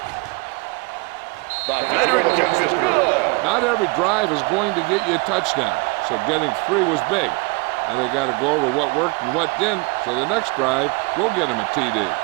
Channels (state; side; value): quieter; left; 28.3 dB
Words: The veteran kicks it through. Not every drive is going to get you a touchdown, so getting 3 was big. Now they got to go over what worked and what didn't, so the next drive will get him a TD.